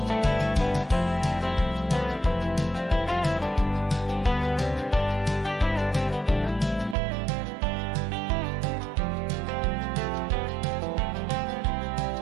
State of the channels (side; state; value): left; drops out; at 7.0 s